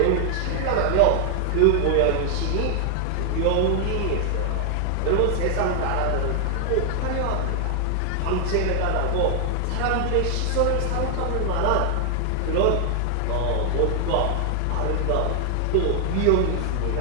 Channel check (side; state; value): both; different; correlation 0.00